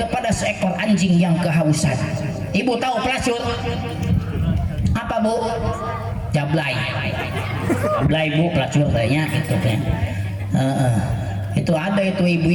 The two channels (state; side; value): identical; both; correlation 1.00